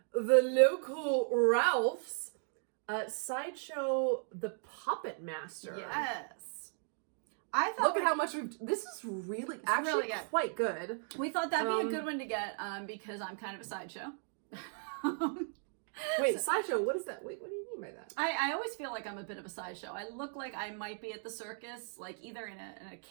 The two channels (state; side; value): silent; left; 54 dB below the other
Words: the local Ralph's, Sideshow the Puppet Master. Yes. I thought Look at how much this is really, actually really good. quite good. We thought that'd be a good one to get, because I'm kind of a sideshow. Wait, Sideshow, what is that? Wait, what do you mean by that? I always feel like I'm a bit of a sideshow. I look like I might be at the circus, like either in a